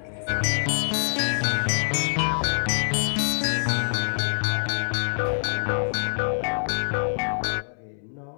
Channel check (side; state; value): right; silent; 62 dB below the other